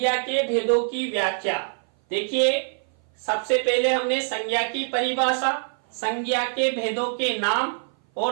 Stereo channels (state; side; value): silent; left; 58 dB below the other